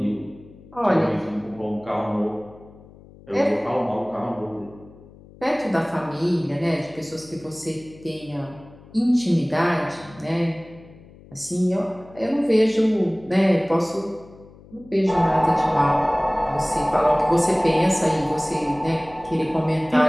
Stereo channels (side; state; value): left; noise; hum, 22 dB below the sound